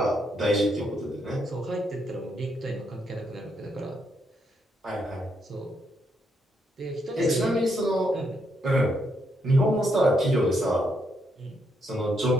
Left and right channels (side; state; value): both; normal; correlation 0.77